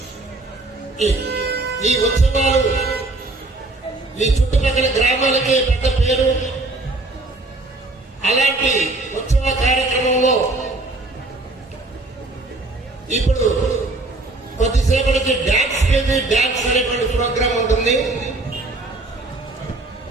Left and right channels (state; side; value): quieter; left; 3.0 dB